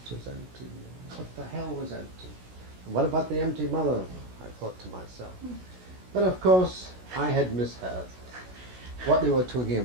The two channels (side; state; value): left; late; 16 ms